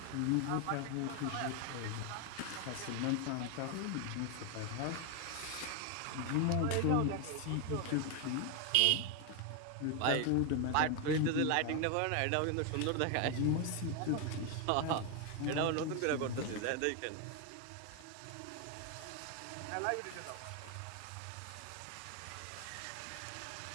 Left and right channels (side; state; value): both; different; correlation 0.01